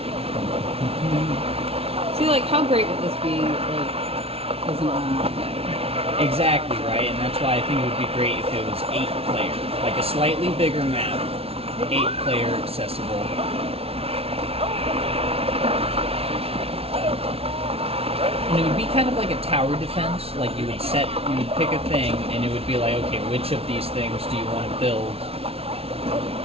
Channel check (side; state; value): left; late; 0.29 ms